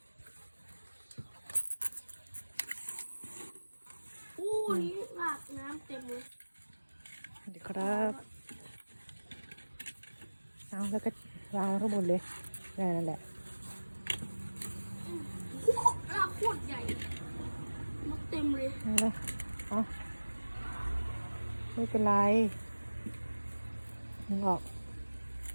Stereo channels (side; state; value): both; inverted; correlation -1.00